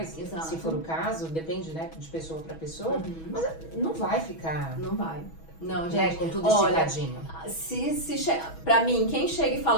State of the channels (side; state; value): right; late; 6.2 ms